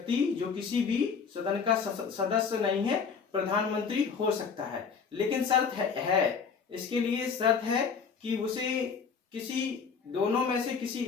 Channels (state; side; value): quieter; right; 5.9 dB